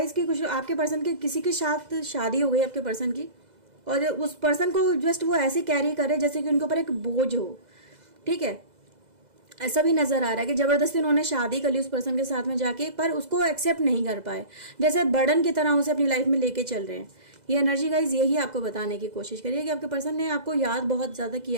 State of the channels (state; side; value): late; left; 2.0 ms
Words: कि कुछ आपके पर्सन के किसी के साथ शादी हो गई आपके पर्सन की, और उस पर्सन को जस्ट वो ऐसे कैरी करे जैसे कि उनके ऊपर एक बोझ हो। ठीक है, ऐसा भी नजर आ रहा है कि जबरदस्ती उन्होंने शादी कर ली उस पर्सन के साथ में जाके, पर उसको एक्सेप्ट नहीं कर पाए, जैसे बर्डन की तरह उसे अपनी लाइफ में लेके चल रहे हैं। ये एनर्जी गाइज यही आपको बताने की कोशिश करिए कि आपके पर्सन ने आपको याद बहुत ज़्यादा